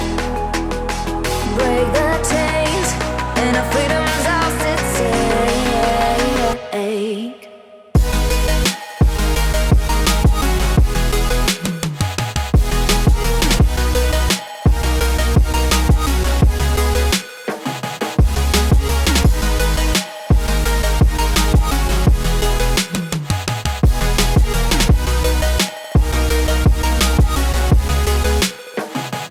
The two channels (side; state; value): both; identical; correlation 1.00